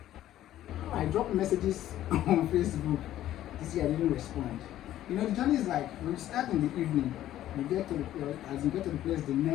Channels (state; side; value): quieter; right; 13.0 dB